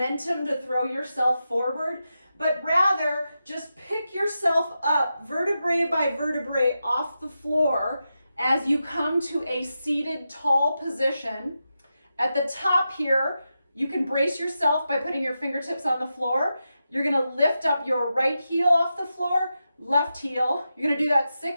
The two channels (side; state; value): both; inverted; correlation -0.89